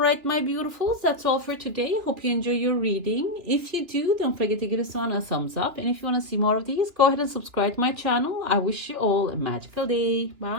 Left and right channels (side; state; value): left; late; 2.8 ms